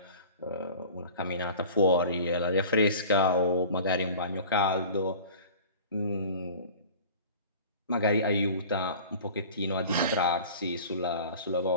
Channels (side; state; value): both; inverted; correlation -0.42